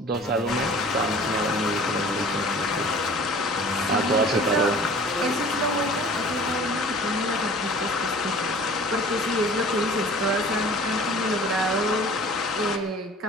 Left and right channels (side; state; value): both; normal; correlation 0.46